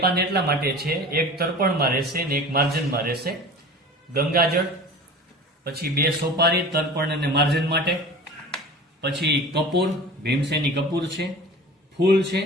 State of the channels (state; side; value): normal; both; correlation 0.38